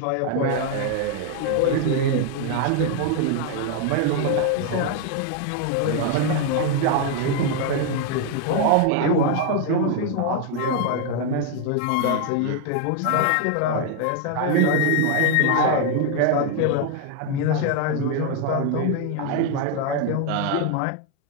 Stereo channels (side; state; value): both; different; correlation 0.00